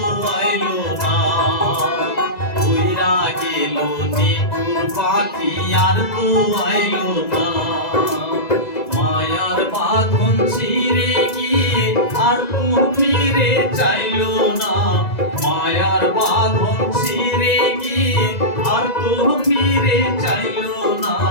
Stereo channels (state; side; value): late; right; 2.0 ms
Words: আইলো না উইরা গেল নিঠুর পাখি আর তো আইলো না মায়ার বাঁধন ছিঁড়ে গিয়ে আর তো ফিরে চাইলো না মায়ার বাঁধন ছিঁড়ে গিয়ে আর তো ফিরে চাইলো না